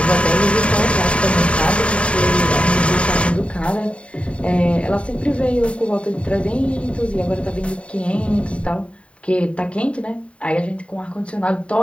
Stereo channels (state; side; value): late; right; 0.061 ms